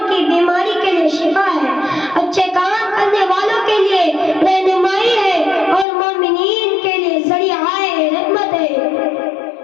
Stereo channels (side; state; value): right; drops out; at 5.9 s